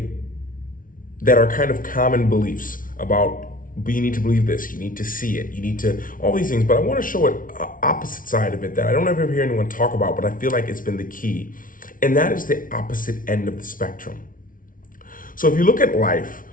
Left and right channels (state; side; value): late; right; 0.39 ms